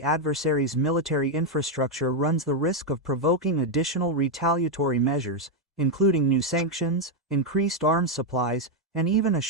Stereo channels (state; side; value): normal; both; correlation 0.02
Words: adversary's military infrastructure runs the risk of provoking additional retaliatory measures, including new sanctions, increased arms supplies, and even a